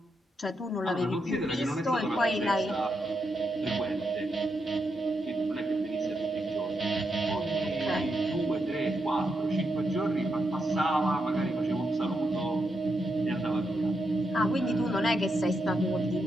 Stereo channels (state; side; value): normal; both; correlation 0.83